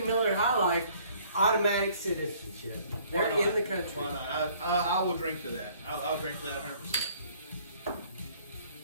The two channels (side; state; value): both; inverted; correlation -0.58